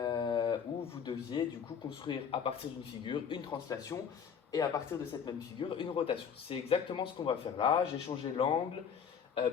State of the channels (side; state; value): right; quieter; 7.2 dB